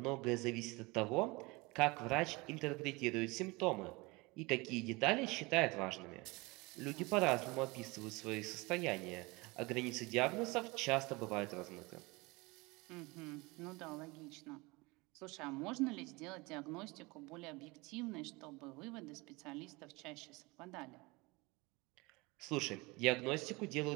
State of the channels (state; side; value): quieter; left; 24.6 dB